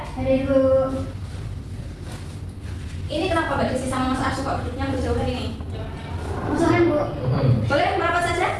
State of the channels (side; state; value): both; identical; correlation 1.00